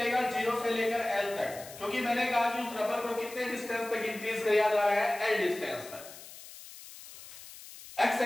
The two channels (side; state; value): left; noise; hiss, 16 dB below the sound